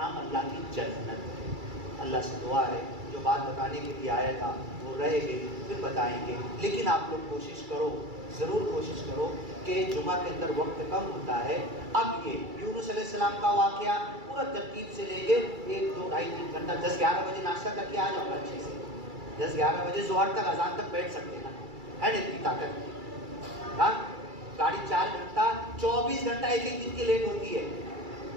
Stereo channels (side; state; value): left; late; 2.3 ms